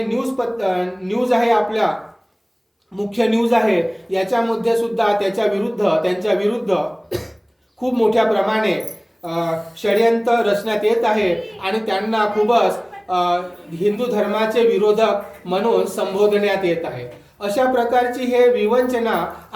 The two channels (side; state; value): both; identical; correlation 1.00